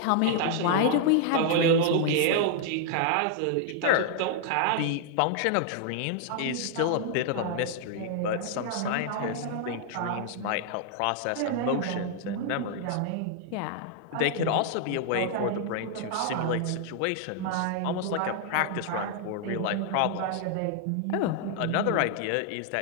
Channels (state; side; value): different; both; correlation 0.00